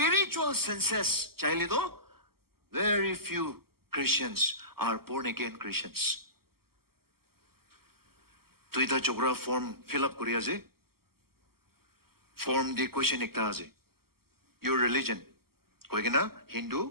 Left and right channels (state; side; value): late; left; 0.95 ms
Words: senses chaylido very few Christians are born again Christians. To ita chogra form fill up kuriya je. Form the question ekta ase. Your religion. Koigena